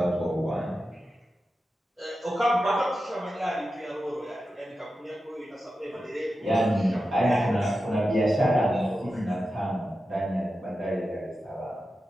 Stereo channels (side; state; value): both; normal; correlation 0.91